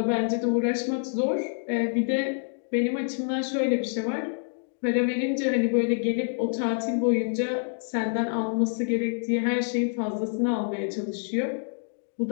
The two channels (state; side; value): silent; right; digital silence